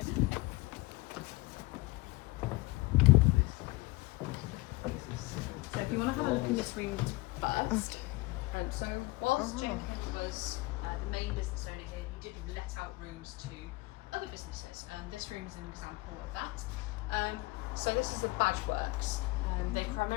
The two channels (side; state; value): right; quieter; 21.9 dB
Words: So if you want to have a look in this room first. So whilst Jenkins was the main business owner here, he did let out rooms to other businesses, and this room is an example of that. So this is the badge works. They